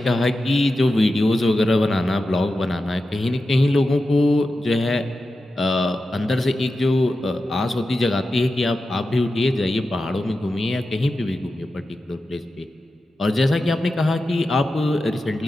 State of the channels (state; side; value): normal; both; correlation 0.91